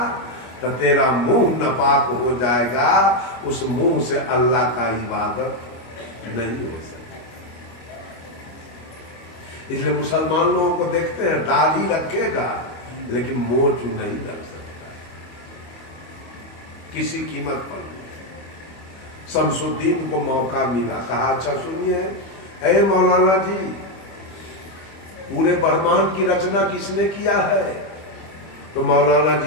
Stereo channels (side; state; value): right; late; 25 ms